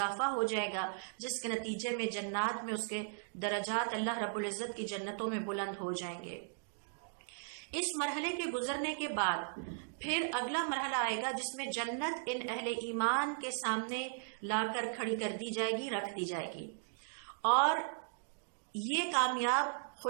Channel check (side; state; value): left; silent; digital silence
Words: ہو جائے گا، جس کے نتیجے میں جنات میں اس کے درجات اللہ رب العزت کی جنتوں میں بلند ہو جائیں گے۔ اس مرحلے کے گزرنے کے بعد پھر اگلا مرحلہ آئے گا جس میں جنت ان اہل ایمان کے سامنے لا کر کھڑی کر دی جائے گی، رکھ دی جائے گی، اور یہ کامیاب